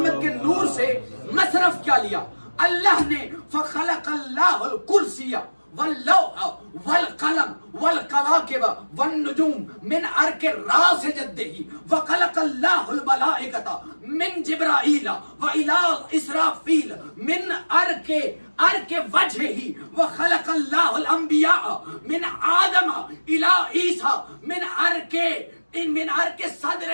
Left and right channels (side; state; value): both; inverted; correlation -1.00